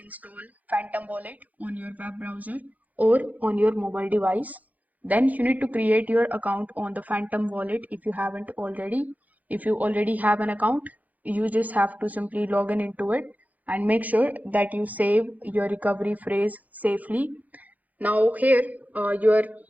Phantom Wallet on your web browser or on your mobile device. Then you need to create your account on the Phantom Wallet if you haven't already. If you already have an account, you just have to simply log in into it and make sure that you save your recovery phrase safely. Now here, your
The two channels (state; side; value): late; left; 0.079 ms